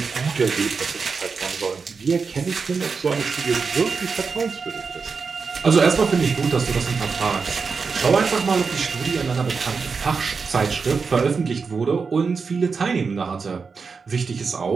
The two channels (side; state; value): left; quieter; 5.1 dB